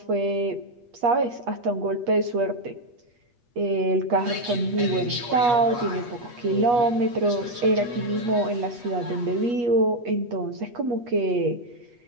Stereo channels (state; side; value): late; left; 8.3 ms